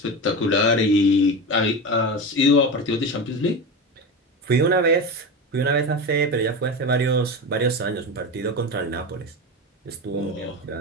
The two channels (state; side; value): normal; both; correlation 0.23